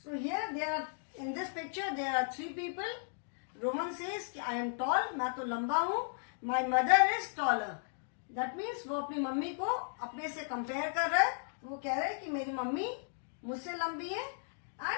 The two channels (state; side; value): silent; right; digital silence